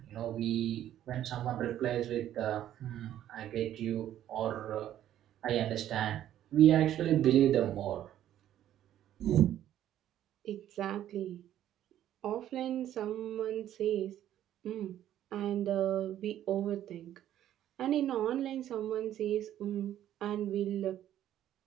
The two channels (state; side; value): quieter; left; 11.8 dB